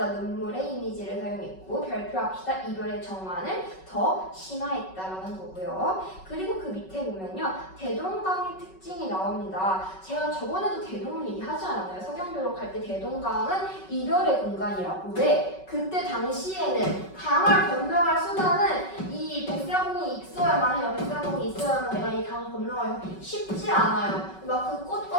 눈물의 이미지를 사용했고 별표합시다 이별의 정환을 더 심화했다라는 거고요. 그리고 그 밑에 보면요. 대동강의 특징이 나옵니다. 제가 저번에도 대동을 얘기하지 않았나요? 서경교록할 때 대동강은 이별의 공간이라고. 왜? 그때 당시에는 강을 건너갈 수단은 이 백사공이 있어야만 해요. 백사공이 있어야만 내가 이 강을 건너가기 쉽지 않아요. 막 그 꽃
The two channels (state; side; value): late; right; 5.3 ms